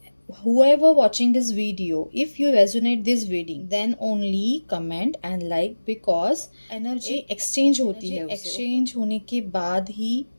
whoever watching this video, if you resonate this video, then only comment and like, because energy exchange होती है, एक्सचेंज होने के बाद ही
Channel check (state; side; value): inverted; both; correlation -1.00